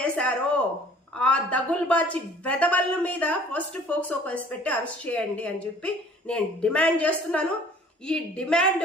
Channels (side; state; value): both; normal; correlation 0.52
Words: చేశారో ఆ దగుల్బాచి వెధవల మీద ఫస్ట్ ఫోక్సో కేసు పెట్టి అరెస్ట్ చేయండి అని చెప్పి నేను డిమాండ్ చేస్తున్నాను. ఈ డిమాండ్